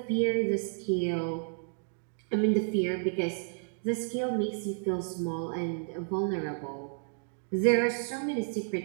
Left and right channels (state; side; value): silent; left; 57 dB below the other